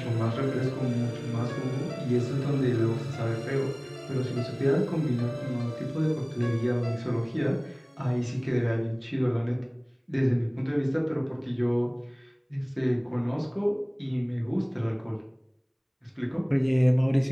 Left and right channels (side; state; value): both; identical; correlation 1.00